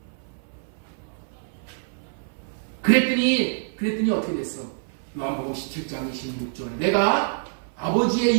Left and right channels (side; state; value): left; silent; 56 dB below the other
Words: 그랬더니 어떻게 됐어? 요한복음 17장 26절. 내가 아버지의